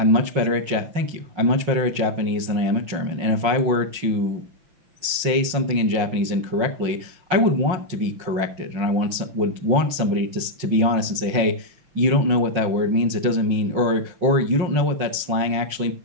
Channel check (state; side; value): late; left; 5.6 ms